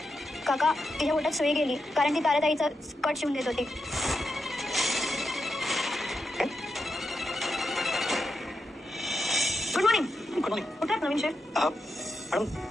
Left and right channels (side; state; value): both; normal; correlation 0.86